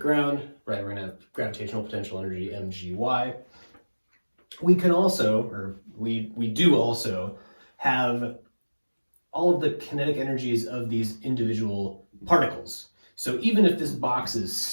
right? We're going to have gravitational potential energy, mgy. We can also, or we do also, have all of the kinetic energies of these individual particles. So even if this box is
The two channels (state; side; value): inverted; both; correlation -1.00